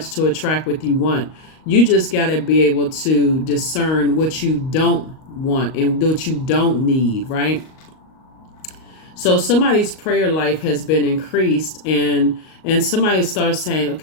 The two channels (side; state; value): right; late; 38 ms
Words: to attract what you want. You just got to be able to discern what you don't want and what you don't need, right? So somebody's prayer life has been increased, and somebody starts saying,